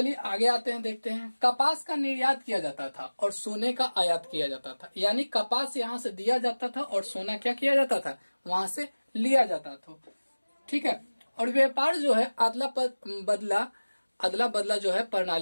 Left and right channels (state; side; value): inverted; both; correlation -1.00